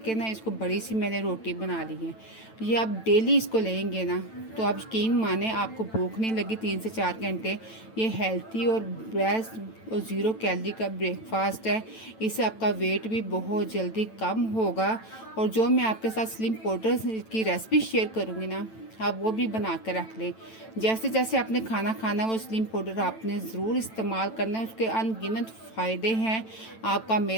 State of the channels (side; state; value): right; late; 9.0 ms